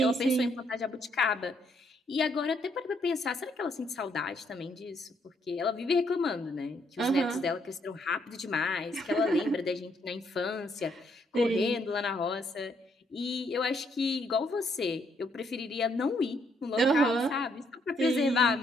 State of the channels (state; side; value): normal; both; correlation 0.72